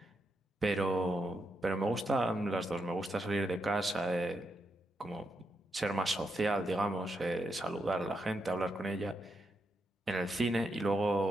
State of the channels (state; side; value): normal; both; correlation 0.83